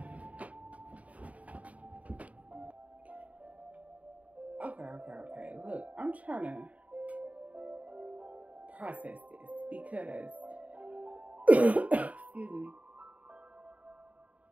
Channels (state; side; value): late; left; 0.069 ms